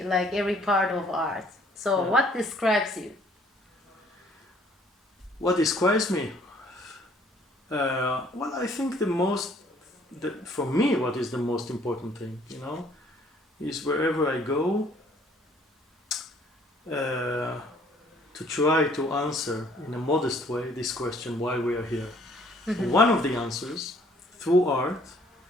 like every part of art. So Yeah. what describes you? What describes me? Well, I think for me, what is the most important thing, you know, is wherever I go, to try to answer in a modest way this question, why we are here. One of the answers through art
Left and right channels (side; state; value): both; normal; correlation 0.60